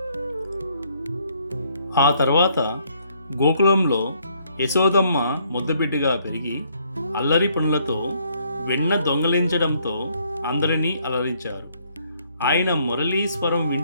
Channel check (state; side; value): inverted; both; correlation -0.68